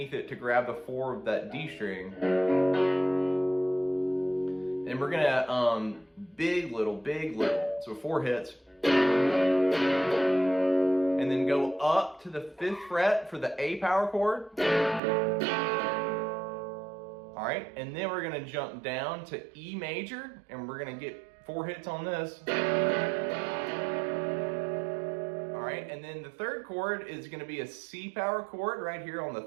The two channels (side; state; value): left; drops out; at 15.0 s